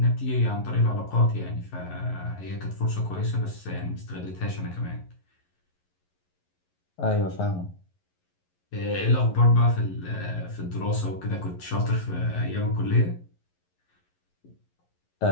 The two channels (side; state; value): right; late; 11 ms